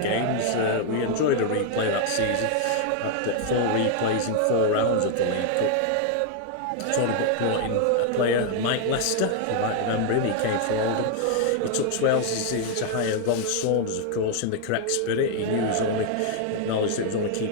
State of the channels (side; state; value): both; different; correlation 0.00